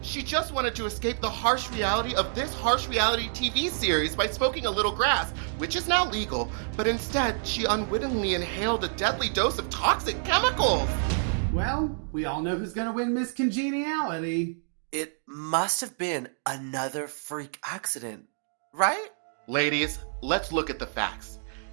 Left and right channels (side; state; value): left; silent; digital silence